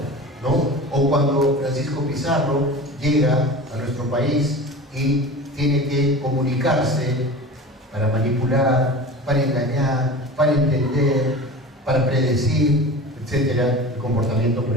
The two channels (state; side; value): normal; both; correlation 0.34